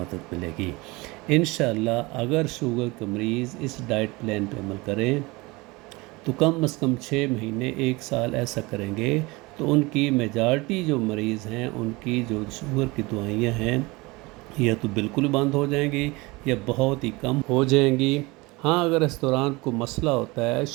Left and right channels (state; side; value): quieter; left; 23.6 dB